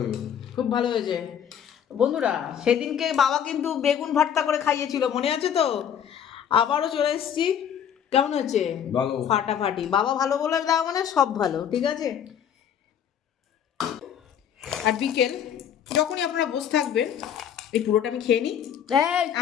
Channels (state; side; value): quieter; right; 8.9 dB